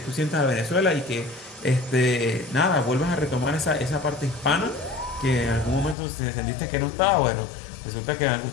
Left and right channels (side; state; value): right; drops out; at 6.0 s